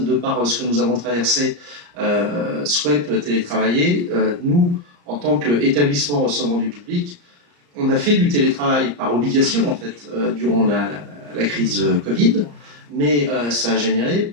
de par ce que nous avons traversé, souhaitent télétravailler. Nous, en tant qu'établissement recevant du public, on a fait du télétravail par obligation, en fait, durant la crise Covid, mais ça a généré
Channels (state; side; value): late; left; 34 ms